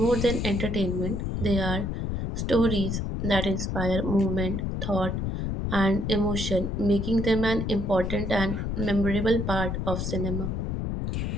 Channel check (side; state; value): left; noise; rumble, 2 dB below the sound